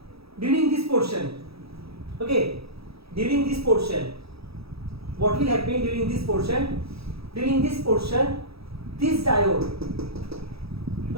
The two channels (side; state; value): left; late; 0.77 ms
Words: during this portion, okay, during this portion, what will happen during this portion? During this portion, this diode,